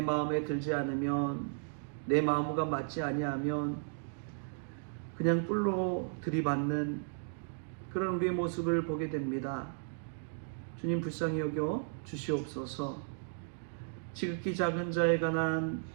마음에 들지 않으면, 내 마음과 맞지 아니하면 그냥 뿔로 들이받는 그런 우리의 모습을 보게 됩니다. 주님, 불쌍히 여겨 주시옵소서. 지극히 작은 자에 관한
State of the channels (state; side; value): silent; left; digital silence